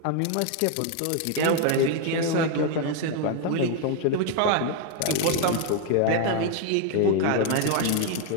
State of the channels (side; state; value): both; different; correlation 0.01